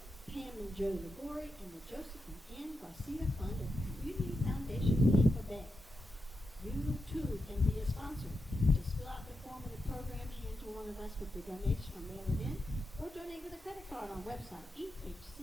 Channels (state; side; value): normal; both; correlation 0.88